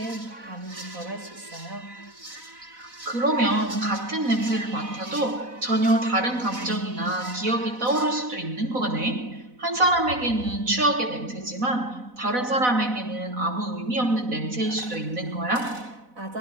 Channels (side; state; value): left; late; 4.0 ms